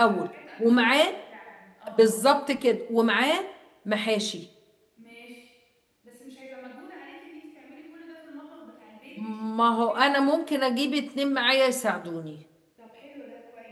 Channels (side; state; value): both; identical; correlation 1.00